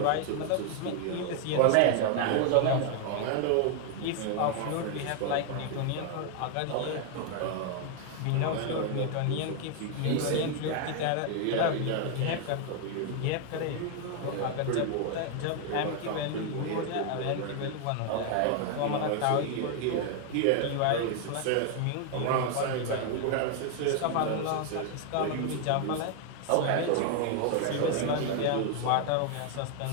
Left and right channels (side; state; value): both; different; correlation 0.00